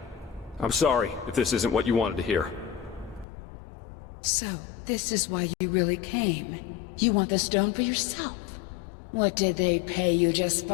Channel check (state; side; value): drops out; right; at 3.2 s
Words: I'm sorry if this isn't what you wanted to hear. So, this is why you really came. You want the stone for yourself. What did they pay you,